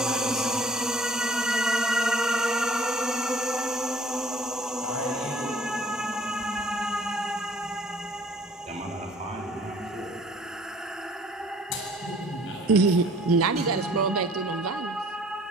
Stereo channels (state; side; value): normal; both; correlation 0.53